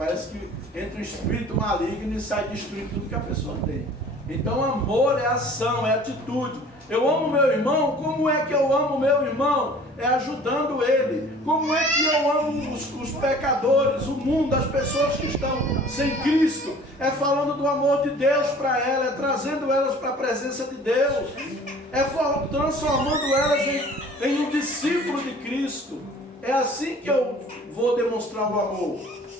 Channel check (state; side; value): normal; both; correlation 0.49